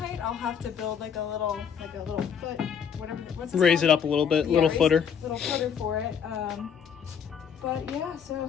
I'll have to build like a little foot, whatever. What's this Raise called? it up a little bit, Yeah, little footer. Little footer for it. But yeah,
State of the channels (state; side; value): quieter; right; 7.5 dB